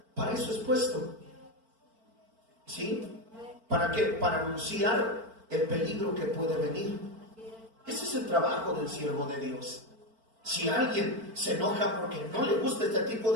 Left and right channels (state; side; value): late; left; 4.4 ms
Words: para eso es puesto. ¿Sí? ¿Para qué? Para anunciar el peligro que puede venir. Ese es el trabajo del siervo de Dios. Si alguien se enoja porque no le gusta este tipo